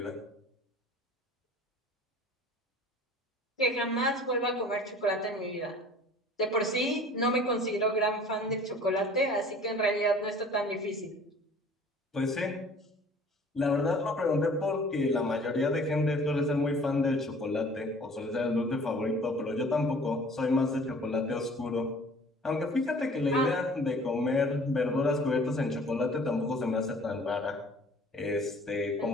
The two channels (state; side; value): normal; both; correlation 0.49